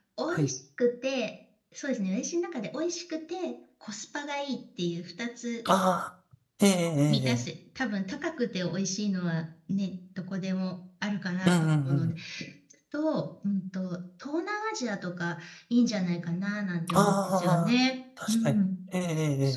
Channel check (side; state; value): both; identical; correlation 1.00